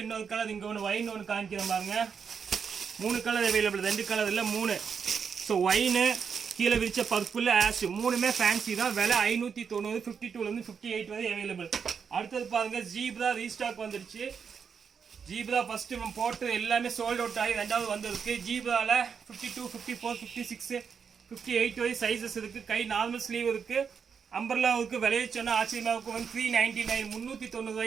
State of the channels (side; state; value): left; quieter; 6.5 dB